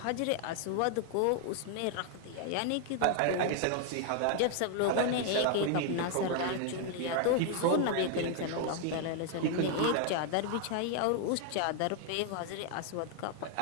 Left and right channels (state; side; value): different; both; correlation 0.00